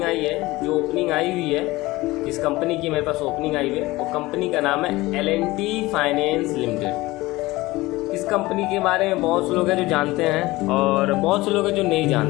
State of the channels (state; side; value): quieter; right; 19.7 dB